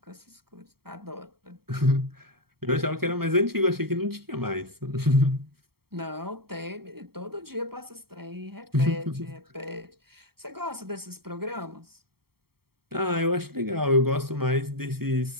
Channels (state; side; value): late; left; 0.95 ms